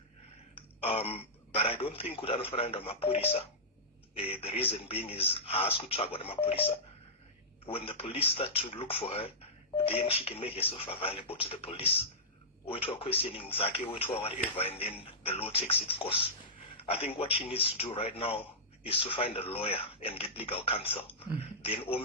But I don't think kuti anofanira kuenda mapurisa. The reason being is haasi kutsvagwa nemapurisa. When the police start to look for her, then she can make herself available to the police. Oitwa questioning zake, oitwa whatever, and then the law takes its course. I think what she needs to do right now is to find a lawyer and get legal counsel. Then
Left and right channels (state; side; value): normal; both; correlation -0.15